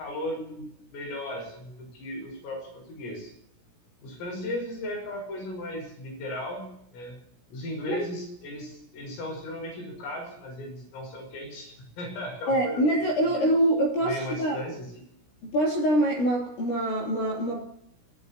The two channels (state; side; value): late; right; 17 ms